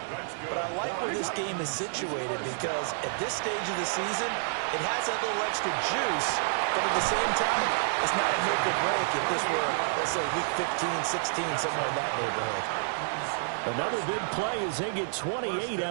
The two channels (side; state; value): left; silent; digital silence